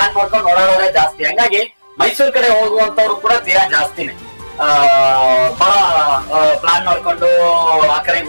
ಮಾಡ್ಕೊಂಡು ಓಡಾಡೋದೇ ಜಾಸ್ತಿ. ಹಂಗಾಗಿ ಮೈಸೂರು ಕಡೆ ಹೋಗುವಂತವ್ರು ಕೂಡ ತೀರಾ ಜಾಸ್ತಿನೇ ಬಹಳ ಪ್ಲಾನ್ ಮಾಡ್ಕೊಂಡು ಆ ಕಡೆಗೆ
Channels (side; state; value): both; inverted; correlation -1.00